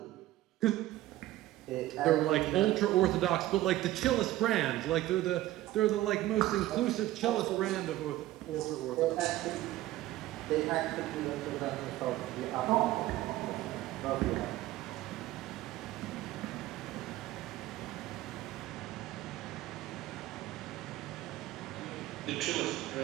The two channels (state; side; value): quieter; left; 15.6 dB